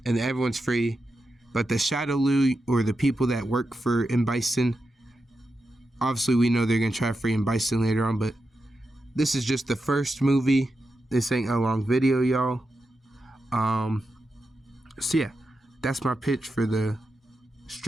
the Shadaloo, or the people that work for M. Bison, obviously we know they're gonna try to free M. Bison later on, but this is just the first movie. This ain't a long video, y'all. So yeah, that's my pitch for the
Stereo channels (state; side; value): normal; both; correlation 0.88